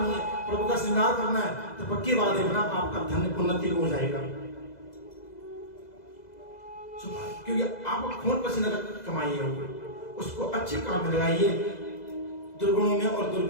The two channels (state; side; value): late; right; 2.0 ms